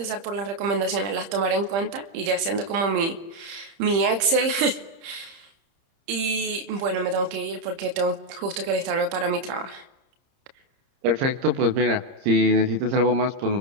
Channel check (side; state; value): left; late; 30 ms